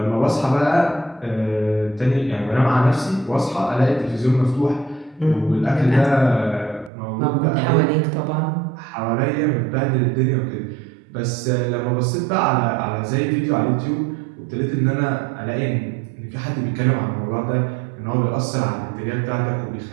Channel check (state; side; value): drops out; left; at 6.9 s